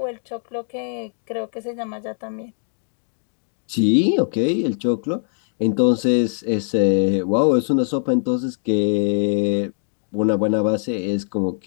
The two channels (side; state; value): right; silent; digital silence